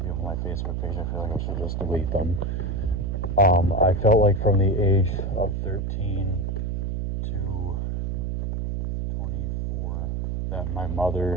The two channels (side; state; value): right; noise; hum, 1 dB below the sound